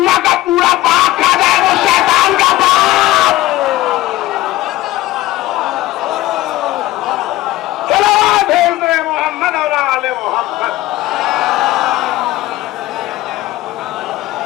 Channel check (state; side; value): quieter; right; 16.8 dB